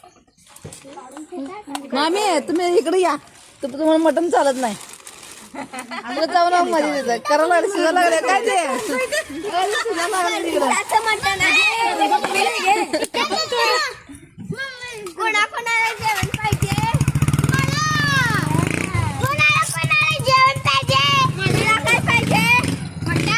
मामी तुम्ही इकडे या. तुम्हाला मटण चालत नाही. आम्हाला जाऊन मध्ये देत करायला लागले शिजा लागले काय ते शिजा लागले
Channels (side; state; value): both; identical; correlation 1.00